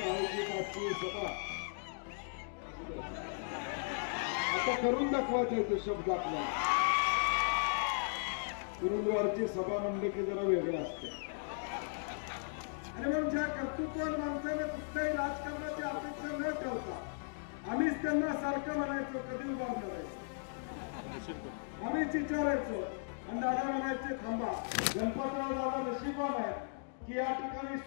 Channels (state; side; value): silent; right; digital silence